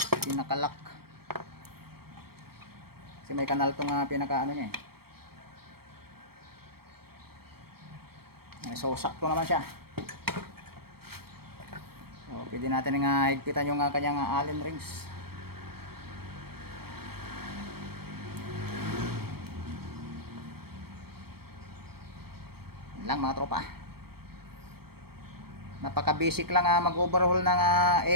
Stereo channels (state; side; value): late; left; 0.95 ms